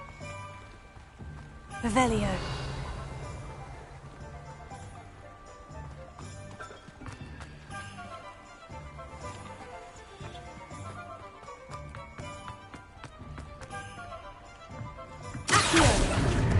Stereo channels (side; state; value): both; identical; correlation 1.00